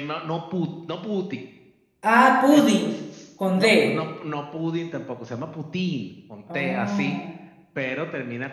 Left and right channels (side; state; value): both; identical; correlation 1.00